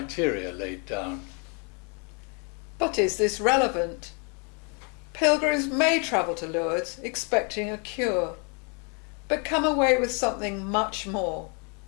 laid down. But is this relevant? Pilgrims may travel to Lourdes expecting a cure, but come away with something much more.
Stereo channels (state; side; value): quieter; right; 36.2 dB